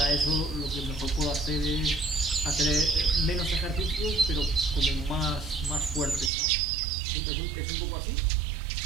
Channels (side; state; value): left; drops out; at 6.3 s